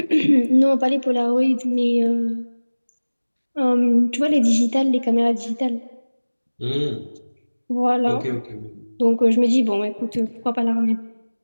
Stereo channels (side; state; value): both; inverted; correlation -1.00